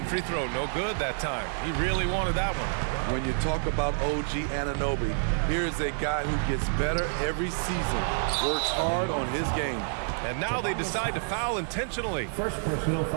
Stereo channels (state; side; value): silent; left; digital silence